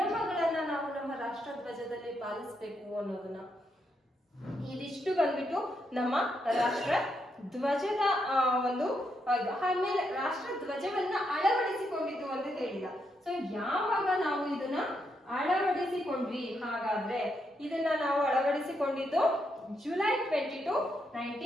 ನಾವು ನಮ್ಮ ರಾಷ್ಟ್ರ ಧ್ವಜದಲ್ಲಿ ಪಾಲಿಸ್ಬೇಕು ಅನ್ನೋದನ್ನ, ಇದಿಷ್ಟು ಬಂದ್ಬಿಟ್ಟು ನಮ್ಮ ರಾಷ್ಟ್ರ ಧ್ವಜದ ಒಂದು. ಆಮೇಲೆ ರಾಷ್ಟ್ರ ಧ್ವಜವನ್ನ ಅಳವಡಿಸಿಕೊಂಡಿದ್ದು ಅಂತ ಹೇಳಿದ. ಸೊ ಯಾವಾಗ ನಾವು ಇದನ್ನ ಅಳವಡಿಸಿಕೊಂಡ್ವಿ? ಹಾಗಾದ್ರೆ ಇದನ್ನ ನಾವು ಅಳವಡಿಸಿಕೊಂಡಿದ್ದು ಜುಲೈ 22,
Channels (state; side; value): normal; both; correlation 0.80